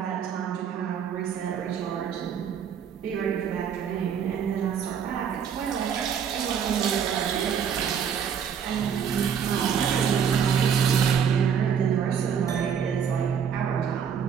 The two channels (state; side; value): quieter; left; 7.6 dB